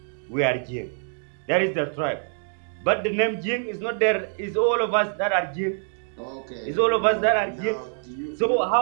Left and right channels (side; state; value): left; silent; 62 dB below the other